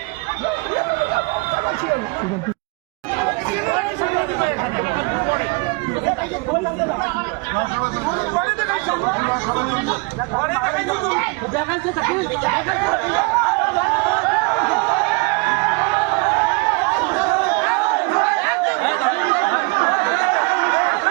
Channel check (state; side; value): quieter; left; 29.2 dB